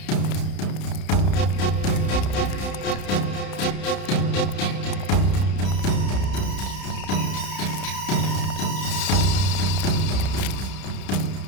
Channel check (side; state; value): right; late; 31 ms